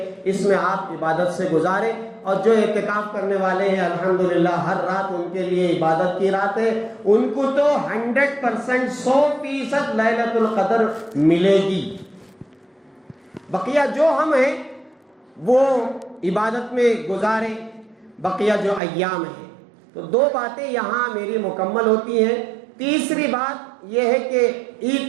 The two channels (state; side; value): drops out; left; at 18.8 s